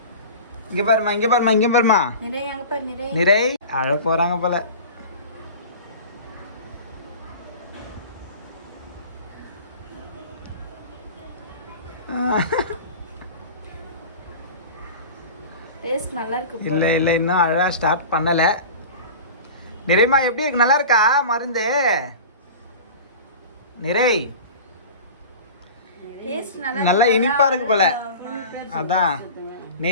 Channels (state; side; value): inverted; both; correlation -0.35